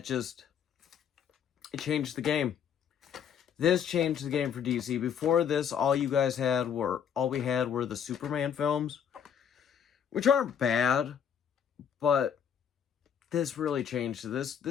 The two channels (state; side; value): quieter; right; 8.1 dB